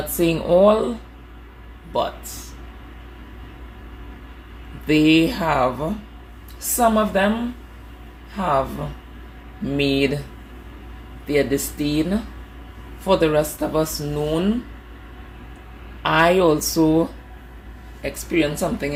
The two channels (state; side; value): identical; both; correlation 1.00